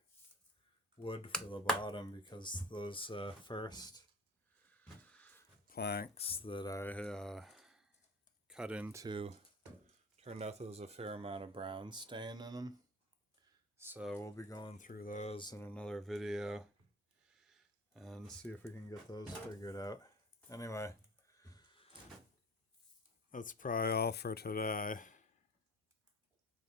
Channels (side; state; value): both; normal; correlation 0.38